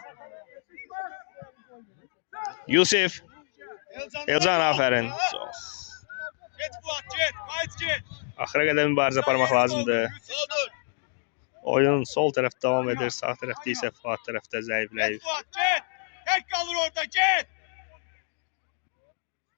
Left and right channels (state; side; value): silent; right; digital silence